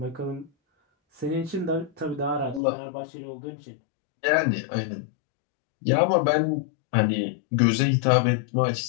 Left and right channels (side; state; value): right; drops out; at 2.6 s